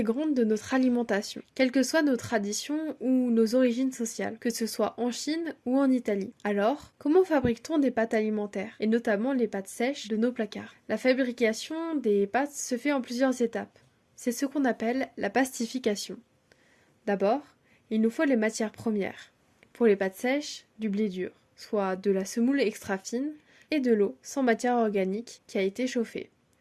de notre alimentation, quelles que soient nos traditions ou nos origines sociales, que ce soit en Chine ou en Italie. Alors, comment fabrique-t-on des pâtes alimentaires, et notamment les pâtes sèches de nos placards? La fabrication des pâtes se fait en plusieurs étapes. C'est ce qu'on appelle la pastification. D'abord, il nous faut les matières premières. Pour les pâtes sèches, du blé dur, soit de la semoule extra fine, et de l'eau sans matière organique qui a été chauffée.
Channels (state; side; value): identical; both; correlation 1.00